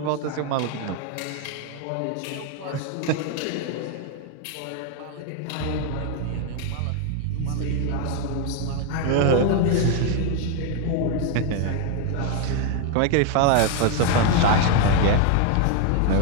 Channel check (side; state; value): both; different; correlation 0.00